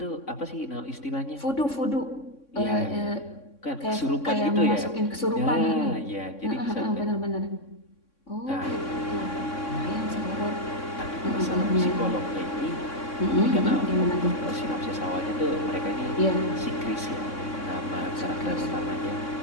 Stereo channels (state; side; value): late; right; 3.6 ms